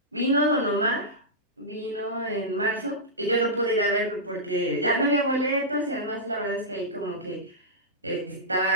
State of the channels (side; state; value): both; normal; correlation -0.13